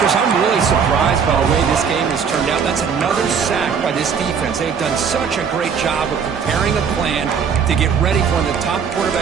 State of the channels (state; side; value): quieter; left; 6.7 dB